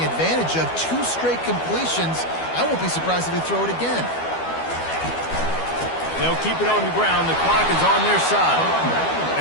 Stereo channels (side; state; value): right; late; 12 ms